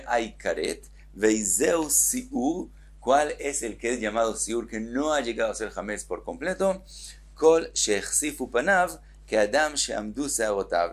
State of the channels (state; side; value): identical; both; correlation 1.00